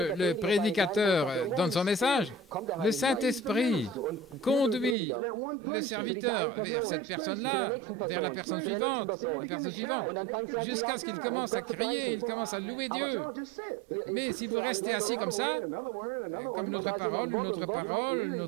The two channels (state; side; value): drops out; left; at 5.0 s